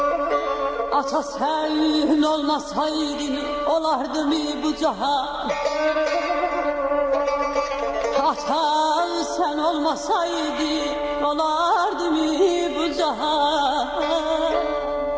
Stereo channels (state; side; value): identical; both; correlation 1.00